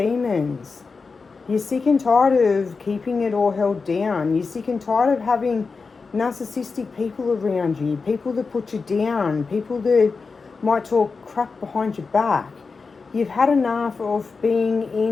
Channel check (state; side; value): quieter; right; 4.6 dB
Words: You're sick and tired of keeping it all held down. You're sick and tired of having narcissistic people around you, people that put you down, people that might talk crap behind your back. You've had enough of being